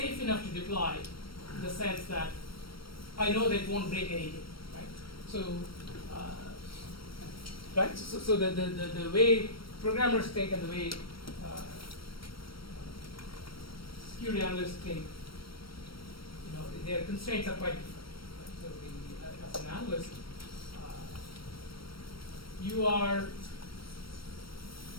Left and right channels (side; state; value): right; late; 0.74 ms